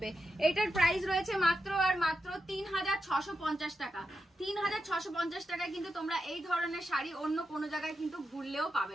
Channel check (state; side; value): normal; both; correlation 0.88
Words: এটার প্রাইস রয়েছে মাত্র আর মাত্র 3650 টাকা। 3650 টাকায় কিন্তু তোমরা এই ধরনের শাড়ি অন্য কোনো জায়গায় কিন্তু ঘুরলেও